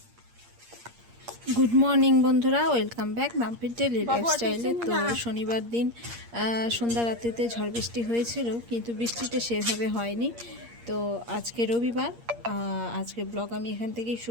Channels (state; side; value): late; left; 8.6 ms